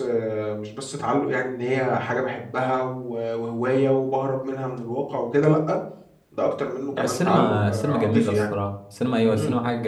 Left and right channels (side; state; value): both; identical; correlation 1.00